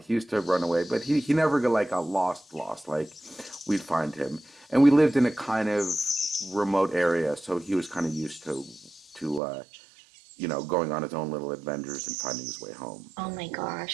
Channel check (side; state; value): left; drops out; at 9.4 s